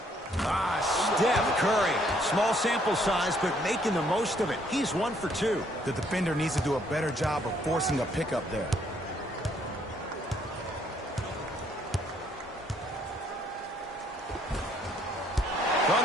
Steph Curry. Small sample size, but making the most of it. He's 1 for 2. The defender needs to do a better job of forcing a pickup there. From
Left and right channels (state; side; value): normal; both; correlation 0.67